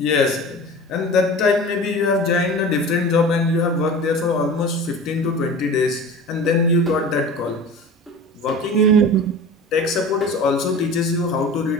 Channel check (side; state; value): both; normal; correlation 0.37